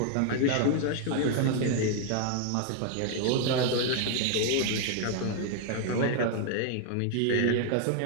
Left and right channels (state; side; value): different; both; correlation 0.00